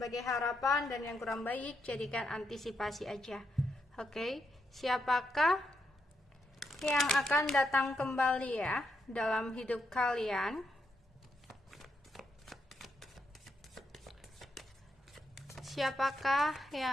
harapan dan yang kurang baik jadikan antisipasi aja. Oke, siapakah yang akan datang kembali ya dalam hidup kalian? Siapakah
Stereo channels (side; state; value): both; normal; correlation 0.80